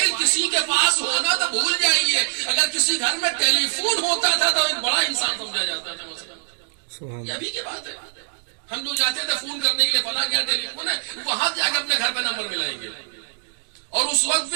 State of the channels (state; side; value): silent; left; digital silence